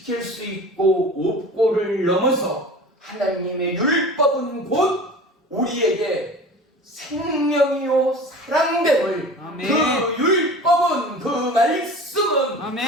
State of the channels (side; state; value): both; normal; correlation 0.38